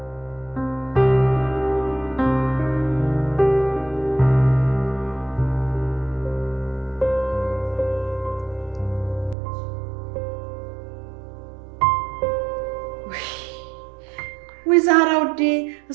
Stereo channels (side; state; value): left; drops out; at 9.3 s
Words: ወይ ዛህራ ወዴ